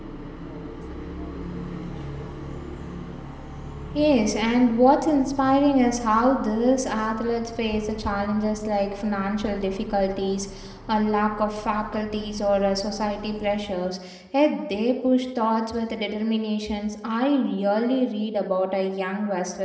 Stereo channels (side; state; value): both; identical; correlation 1.00